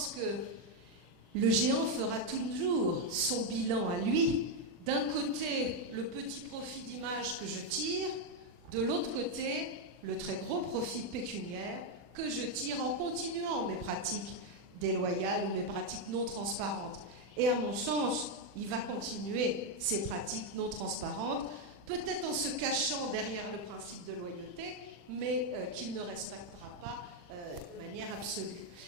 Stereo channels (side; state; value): left; late; 40 ms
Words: que le géant fera toujours son bilan à lui. D'un côté, le petit profit d'image que je tire, de l'autre côté, le très gros profit pécuniaire que je tire en continuant mes pratiques déloyales ou mes pratiques non transparentes. Et à mon sens, il va continuer ces pratiques non transparentes, peut-être en se cachant derrière le principe de loyauté, mais qu'il ne respectera pas de manière absolue.